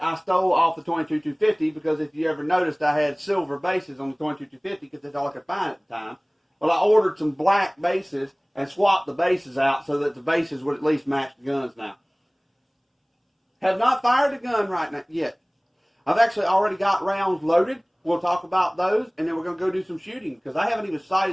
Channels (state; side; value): identical; both; correlation 1.00